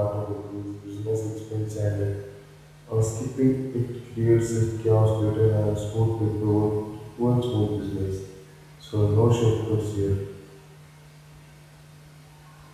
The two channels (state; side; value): identical; both; correlation 1.00